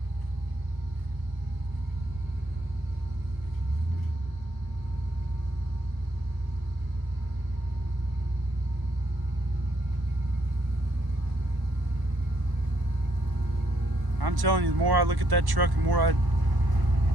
I'm telling you, the more I look at that truck, the more I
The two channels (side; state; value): left; late; 1.1 ms